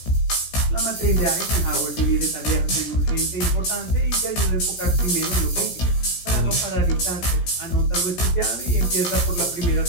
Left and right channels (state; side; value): late; right; 17 ms